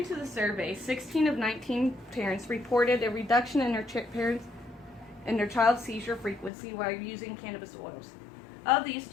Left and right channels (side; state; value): right; drops out; at 6.5 s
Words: to the survey, 16 of 19 parents reported a reduction in their child's seizure frequency while using cannabis oils. Of these,